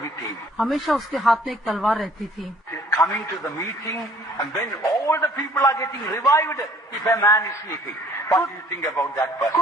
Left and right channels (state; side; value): normal; both; correlation 0.57